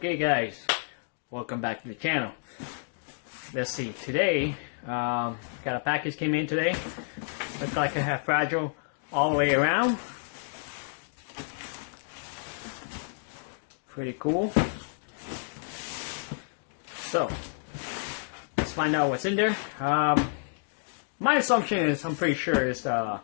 guys, welcome back to the channel. Let's see, today got a package came in today. Looks like I have fragile all the way around. Pretty cool. So let's find out what's in there. My assumption is I'm pretty sure it's the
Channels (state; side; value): silent; right; digital silence